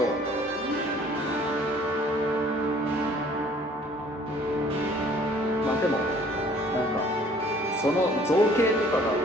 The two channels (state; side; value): normal; both; correlation 0.55